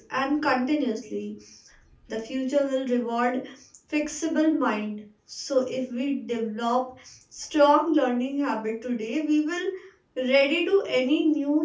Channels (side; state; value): both; identical; correlation 1.00